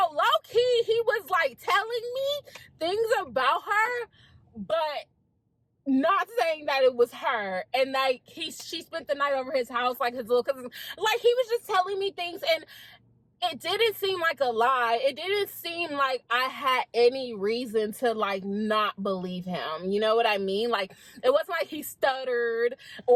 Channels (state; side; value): identical; both; correlation 1.00